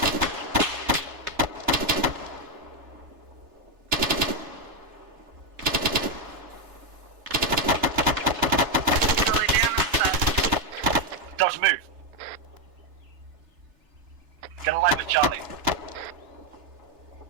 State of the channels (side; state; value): left; late; 3.3 ms